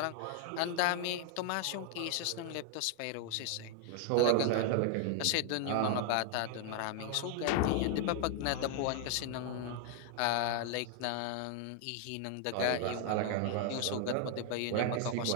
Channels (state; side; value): different; both; correlation 0.00